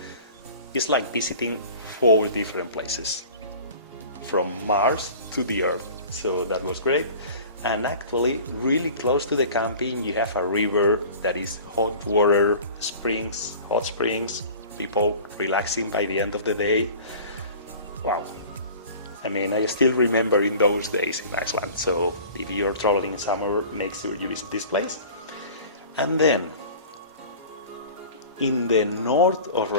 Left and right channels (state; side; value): inverted; both; correlation -0.42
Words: it's like visiting 4 different places from Mars to the Earth. So that was great. And actually, really close to the camping, you have a river that is hot water, springs, hot springs, people relaxing by the end of the day. Wow. I mean, I still remember in those days in Iceland. So if you're traveling in summer, make sure you visit this place. And then, in the north of